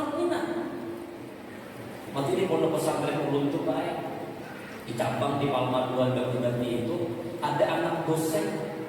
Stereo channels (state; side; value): identical; both; correlation 1.00